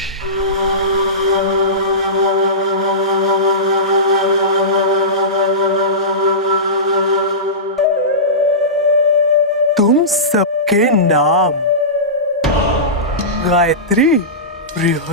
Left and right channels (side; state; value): both; normal; correlation -0.20